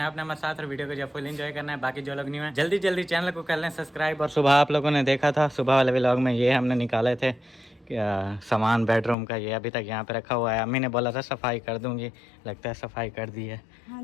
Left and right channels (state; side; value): drops out; right; at 9.2 s